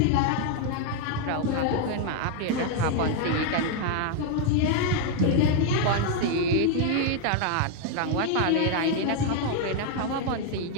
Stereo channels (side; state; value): both; different; correlation 0.00